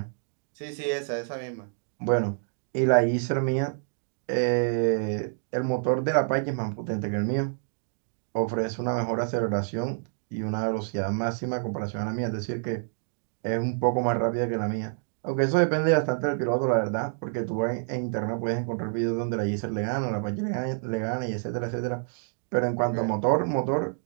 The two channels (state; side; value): silent; left; digital silence